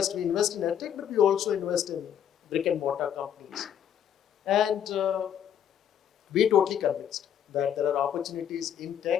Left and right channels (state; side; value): quieter; right; 9.3 dB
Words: we invest in EdTech, but we also invest in brick and mortar companies. And we're totally convinced that there are opportunities in